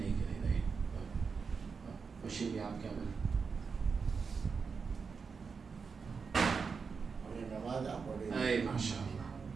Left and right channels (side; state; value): left; quieter; 5.3 dB